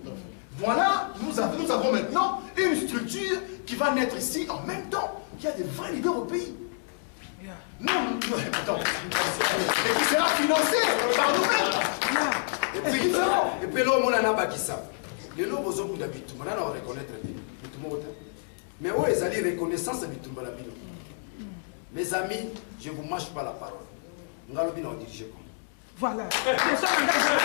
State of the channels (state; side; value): silent; right; digital silence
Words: Voilà, nous avons maintenant une structure qui va naître ici en même temps qu'il y a des vrais leaders au pays. Non, attends. Et qui sera financé par nous-mêmes. Et puis là, on a bakisa. Les lots besoin d'habitude. Maintenant, on reconnaître bien. Mais où est allé reconnaissance habitude la bino? Mes amis, je ne vous mâche pas la parole. Nous allons bien diriger comme. Voilà.